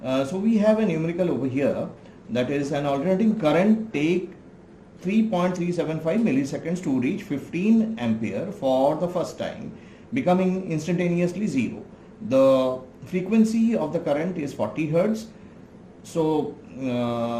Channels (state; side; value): identical; both; correlation 1.00